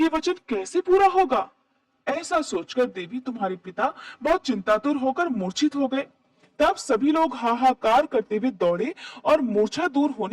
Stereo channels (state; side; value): identical; both; correlation 1.00